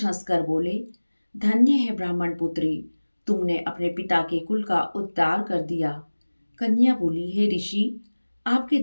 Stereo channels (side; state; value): both; inverted; correlation -1.00